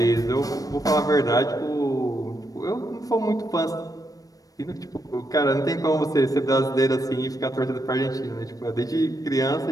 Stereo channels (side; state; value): right; late; 0.18 ms